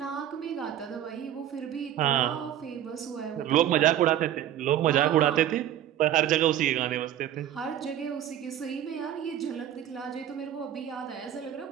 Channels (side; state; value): left; quieter; 11.2 dB